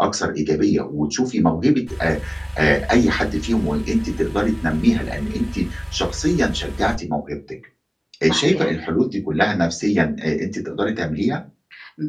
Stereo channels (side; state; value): both; identical; correlation 1.00